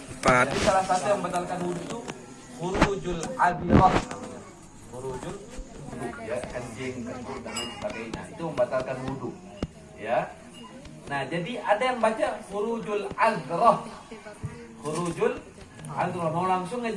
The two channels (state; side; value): identical; both; correlation 1.00